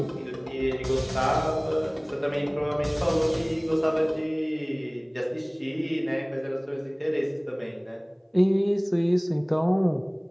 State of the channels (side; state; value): both; identical; correlation 1.00